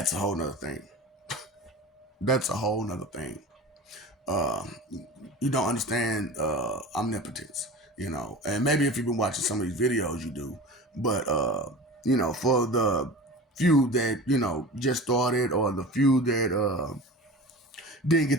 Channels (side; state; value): both; normal; correlation 0.35